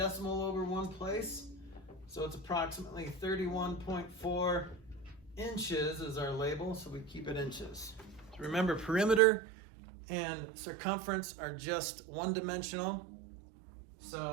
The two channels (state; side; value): drops out; left; at 9.2 s